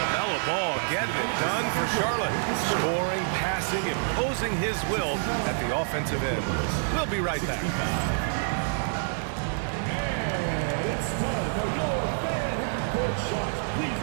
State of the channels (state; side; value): silent; left; 60 dB below the other